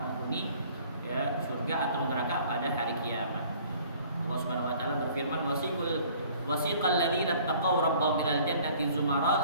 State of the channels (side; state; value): both; inverted; correlation -0.54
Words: ya surga atau neraka pada hari kiamat. Allah Subhanahu wa taala berfirman, wasiqal ladzina taqaw rabbahum ilal jannati